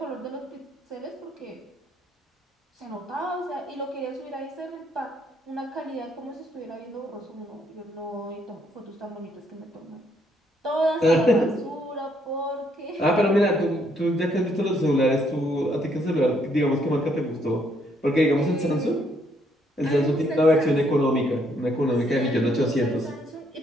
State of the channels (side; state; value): both; normal; correlation 0.70